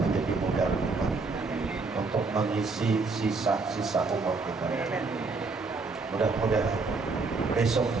modal kita untuk mengisi sisa-sisa umur kita. Mudah-mudahan besok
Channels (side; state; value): left; quieter; 4.0 dB